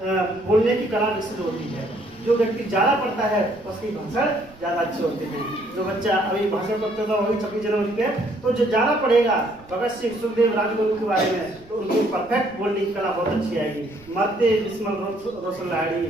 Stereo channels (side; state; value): right; noise; rumble, 24 dB below the sound